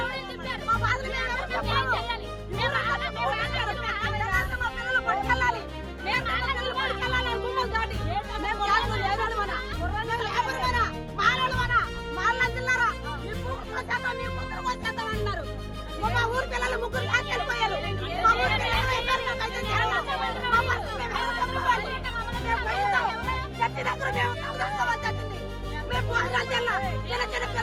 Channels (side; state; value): both; identical; correlation 1.00